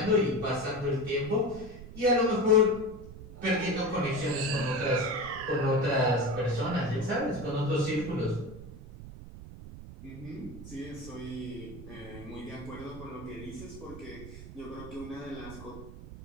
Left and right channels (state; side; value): noise; right; rumble, 14 dB below the sound